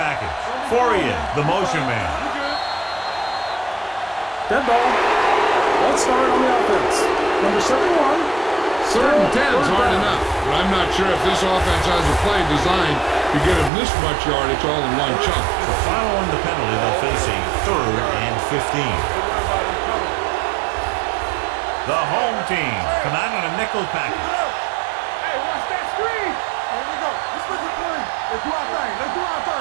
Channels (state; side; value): drops out; left; at 13.7 s